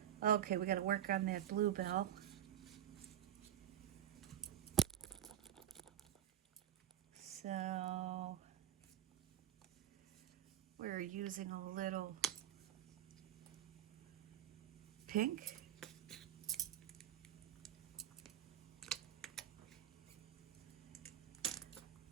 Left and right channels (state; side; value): quieter; left; 11.0 dB